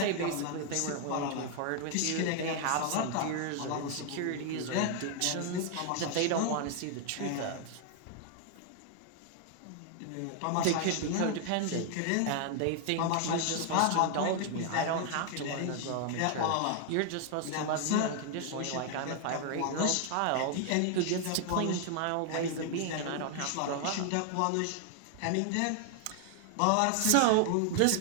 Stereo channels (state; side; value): different; both; correlation 0.00